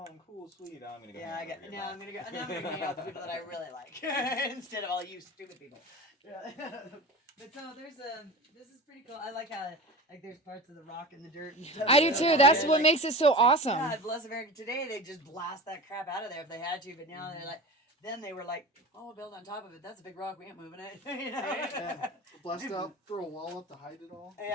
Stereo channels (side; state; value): both; normal; correlation 0.33